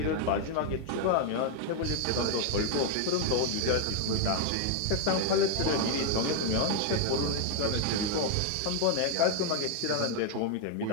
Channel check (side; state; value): both; different; correlation 0.00